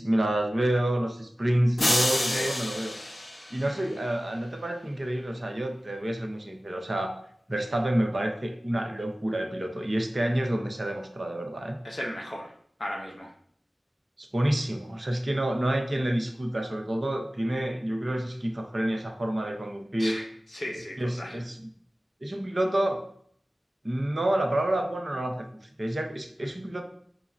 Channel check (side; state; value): both; normal; correlation 0.97